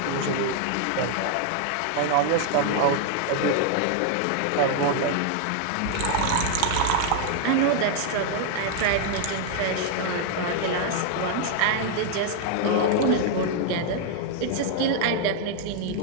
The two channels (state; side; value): different; both; correlation 0.00